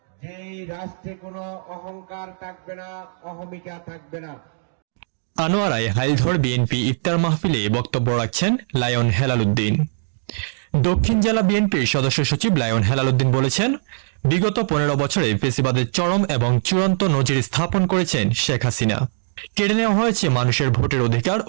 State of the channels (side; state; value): left; silent; digital silence